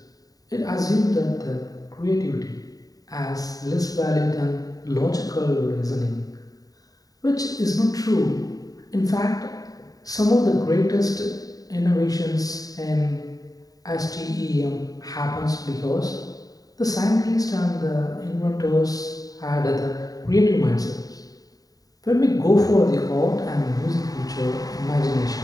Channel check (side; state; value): right; late; 0.18 ms